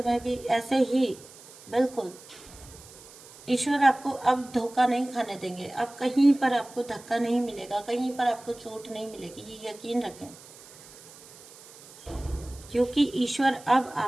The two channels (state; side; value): noise; right; hiss, 20 dB below the sound